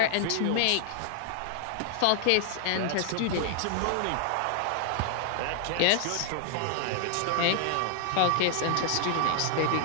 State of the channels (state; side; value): different; both; correlation 0.00